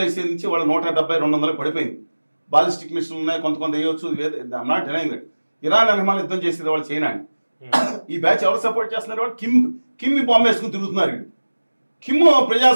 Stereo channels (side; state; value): both; inverted; correlation -1.00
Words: వేసే నుంచి వాళ్ళ 170-200 పడిపోయింది. బాలిస్టిక్ మిషన్లు ఉన్నాయి, కొంత వేయవచ్చు. Not denying that. ఇరాన్ అన్నమాలు యుద్ధం చేసేది వాళ్ళు చైనాని. ఈ బ్యాచ్ ఎవరు సపోర్ట్ చేస్తున్నారు? వాళ్ళు కిమ్మి బాంబు వేసుకుని తిరుగుతున్నారు. కిమ్